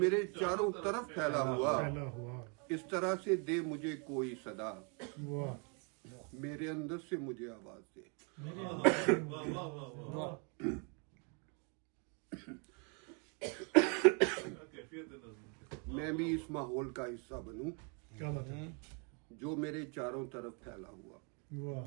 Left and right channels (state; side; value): quieter; left; 36.2 dB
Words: چاروں طرف پھیلا ہوا. اس طرح سے دے مجھے کوئی صدا، میرے اندر سے مجھے آواز دے. میں بھی اس ماحول کا حصہ بنوں جو میرے چاروں طرف پھیلا